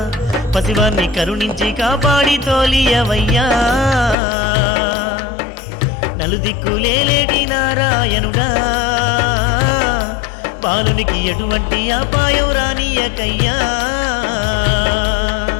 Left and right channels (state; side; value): drops out; right; at 4.2 s